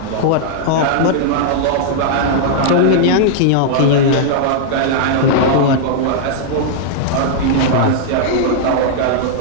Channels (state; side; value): different; both; correlation -0.01